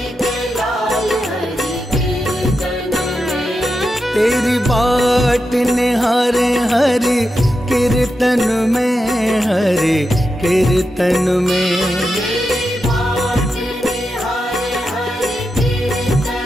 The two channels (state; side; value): normal; both; correlation 0.88